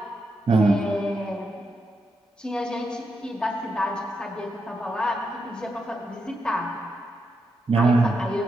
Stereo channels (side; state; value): both; normal; correlation 0.84